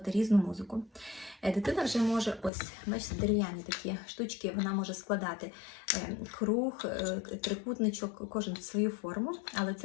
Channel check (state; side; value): drops out; right; at 2.5 s